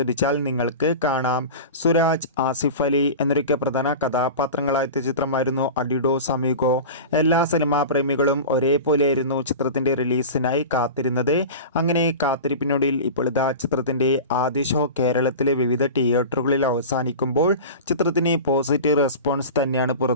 നിങ്ങൾക്ക് കാണാം. സുരാജ്, ആസിഫ് അലി എന്നൊക്കെ പ്രധാന കഥാപാത്രങ്ങളായ ചിത്രമായിരുന്നു അഡിഡോസ് അമിഗോ. എല്ലാ സിനിമാ പ്രേമികളും ഒരേപോലെയായിരുന്നു ചിത്രത്തിൻ്റെ റിലീസിനായി കാത്തിരുന്നത്. അങ്ങനെ കാത്തിരിപ്പിനൊടുവിൽ ഇപ്പോൾ ഇതാ ചിത്രത്തിൻ്റെ ആദ്യ ഷോ കേരളത്തിലെ വിവിധ തിയേറ്ററുകളിൽ അവസാനിക്കുമ്പോൾ ചിത്രത്തിന് പോസിറ്റീവ് റെസ്പോൺസ് തന്നെയാണ്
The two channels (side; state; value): both; inverted; correlation -0.31